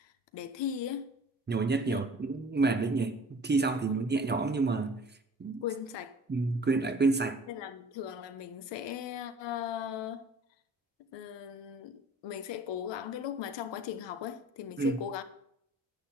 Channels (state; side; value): normal; both; correlation 0.48